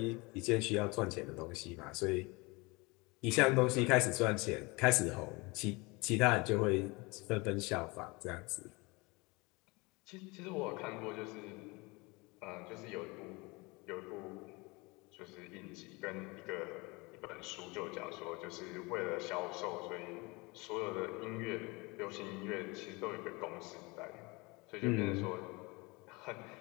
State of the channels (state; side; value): quieter; right; 25.7 dB